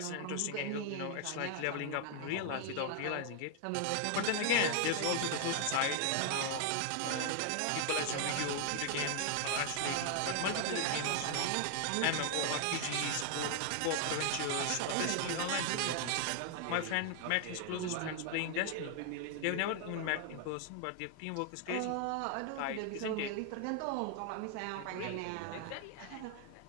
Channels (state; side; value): different; both; correlation 0.00